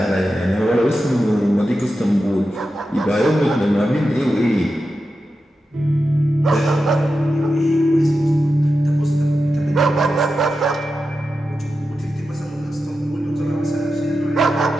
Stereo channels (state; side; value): normal; both; correlation 0.90